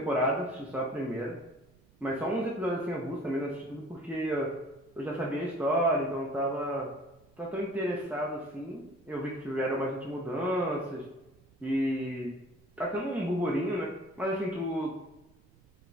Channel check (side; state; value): right; noise; rumble, 29 dB below the sound